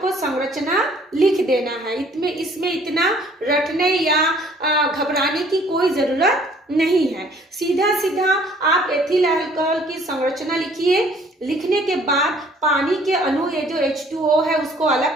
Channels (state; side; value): normal; both; correlation 0.58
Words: संरचना लिख देना है। इसमें इतना रटने या घबराने की कोई जरूरत नहीं है। सीधा सीधा आप एथिल अल्कोहल की संरचना लिखिए। लिखने के बाद पानी के अणु ये जो H2O है उसको